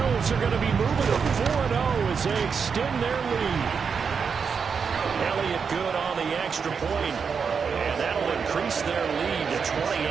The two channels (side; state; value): left; quieter; 6.0 dB